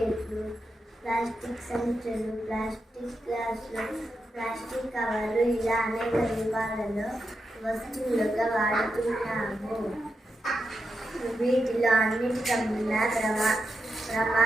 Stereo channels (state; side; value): normal; both; correlation 0.87